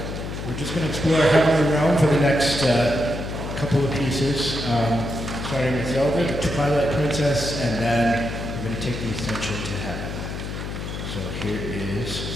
We're just going to explore Heavenly Realm for the next couple of pieces, starting with Zelda, the Twilight Princess, and then we're going to take the ascension to heaven. So here is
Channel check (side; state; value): left; noise; hum, 6 dB below the sound